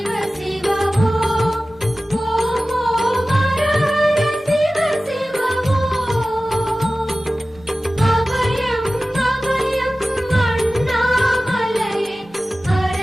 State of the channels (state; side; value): normal; both; correlation 0.96